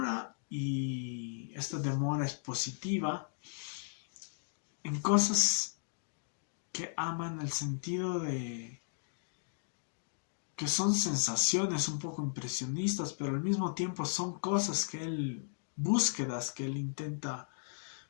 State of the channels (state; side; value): silent; right; digital silence